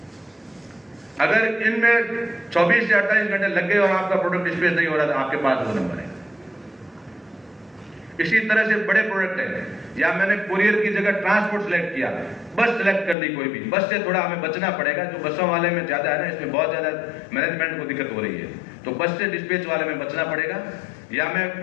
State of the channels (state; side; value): drops out; right; at 13.2 s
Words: अगर इनमें 24 से 28 घंटे लग गए और आपका प्रोडक्ट डिस्पैच नहीं हो रहा तो आपके पास वो नंबर है। इसी तरह से बड़े प्रोडक्ट है, या मैंने कुरियर की जगह ट्रांसपोर्ट सेलेक्ट किया, बस सेलेक्ट कर ली कोई भी, बस से थोड़ा हमें बचना पड़ेगा, जो बसों वाले में ज्यादा है ना, इसमें बहुत ज्यादा मैनेजमेंट को दिक्कत हो रही है, तो बस से डिस्पैच वाले में बचना पड़ेगा। या मैं